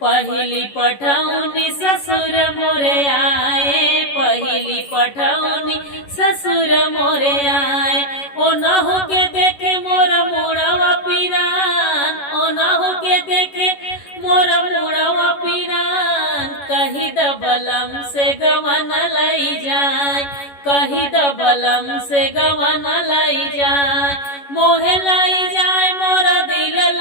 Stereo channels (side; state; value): right; late; 11 ms